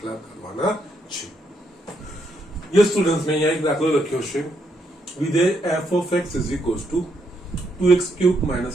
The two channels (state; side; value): normal; both; correlation 0.76